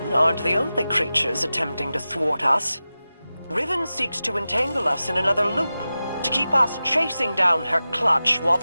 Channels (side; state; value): both; inverted; correlation -0.94